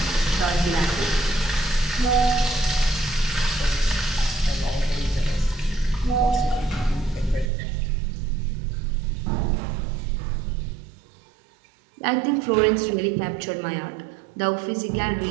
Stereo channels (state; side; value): drops out; left; at 7.5 s